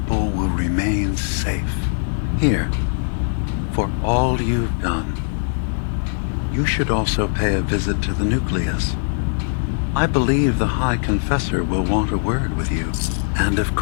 will remain safe. Here, for all you've done. You should also pay a visit to the Nucleus. I believe the High Confessor will want a word with you. And of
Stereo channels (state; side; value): silent; right; digital silence